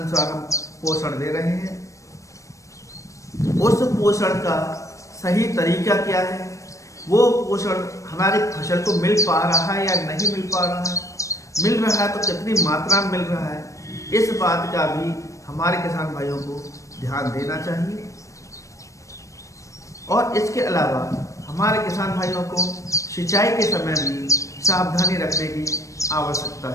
हम पोषण दे रहे हैं, उस पोषण का सही तरीका क्या है, वो पोषण हमारी फसल को मिल पा रहा है या नहीं मिल पा रहा है, मिल रहा है तो कितनी मात्रा में मिल रहा है, इस बात का भी हमारे किसान भाइयों को ध्यान देना चाहिए। और इसके अलावा हमारे किसान भाइयों को सिंचाई के समय भी सावधानी रखने की आवश्यकता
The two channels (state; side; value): late; right; 0.15 ms